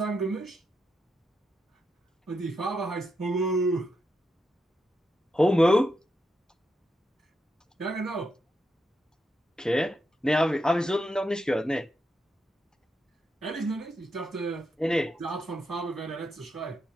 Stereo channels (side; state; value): both; normal; correlation 0.84